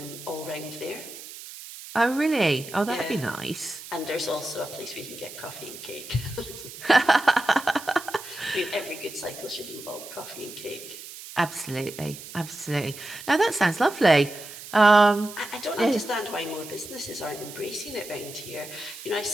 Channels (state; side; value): noise; right; hiss, 13 dB below the sound